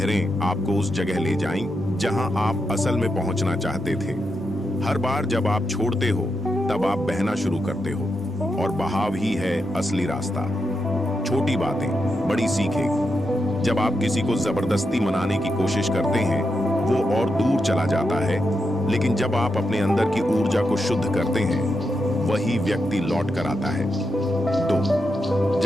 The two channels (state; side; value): normal; both; correlation 0.85